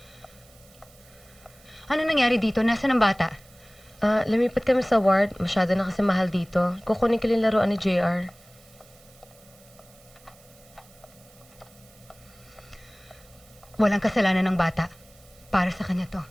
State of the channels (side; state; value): right; noise; hiss, 26 dB below the sound